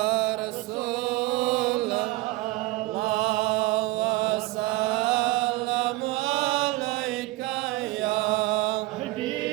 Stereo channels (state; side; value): quieter; left; 19.9 dB